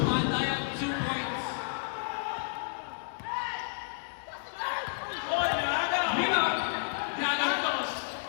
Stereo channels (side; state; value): right; silent; digital silence